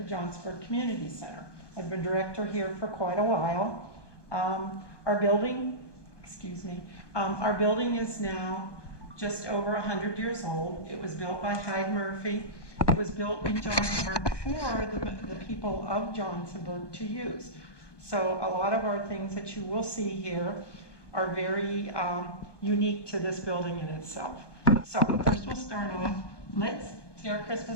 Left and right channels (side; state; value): right; late; 1.2 ms